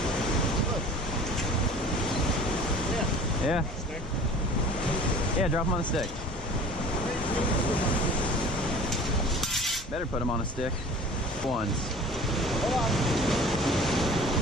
Yeah. Yeah, drop him on the stick. Better put him on a stick. Ones. Hold on.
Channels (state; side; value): normal; both; correlation 0.44